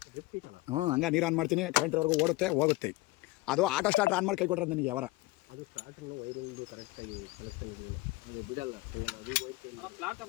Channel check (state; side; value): quieter; right; 20.9 dB